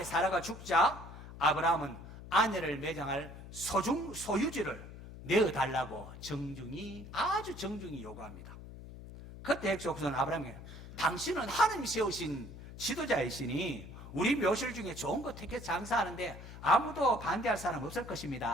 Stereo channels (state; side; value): noise; left; hum, 14 dB below the sound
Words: 사라가 죽자 아브라함은 아내를 매장할 소유지를 내어달라고 아주 정중히 요구합니다. 그때 헷족속은 아브라함에게 당신은 하나님이 세우신 지도자이시니 우리 묘실 중에 좋은 거 택해 장사하는데 아무도 반대할 사람 없을